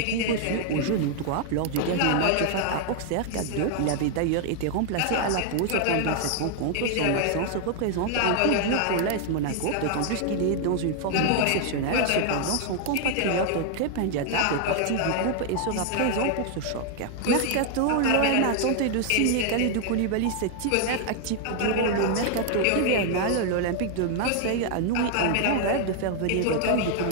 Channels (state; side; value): different; both; correlation 0.00